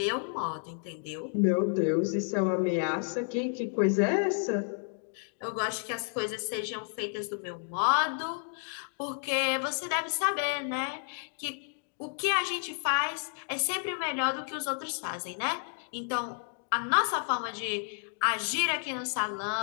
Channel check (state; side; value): silent; right; 57 dB below the other